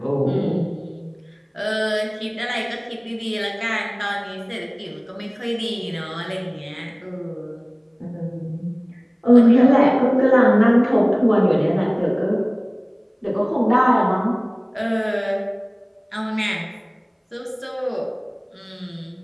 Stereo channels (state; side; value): identical; both; correlation 1.00